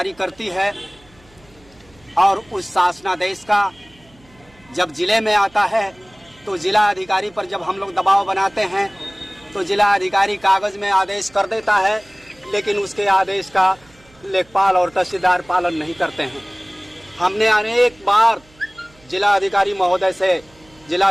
करती है, और उस शासनादेश का जब जिले में आता है तो जिला अधिकारी पर जब हम लोग दबाव बनाते हैं तो जिला अधिकारी कागज में आदेश कर देता है, लेकिन उसके आदेश का लेखपाल और तहसीलदार पालन नहीं करते हैं। हमने अनेक बार जिला अधिकारी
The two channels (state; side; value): noise; right; hum, 29 dB below the sound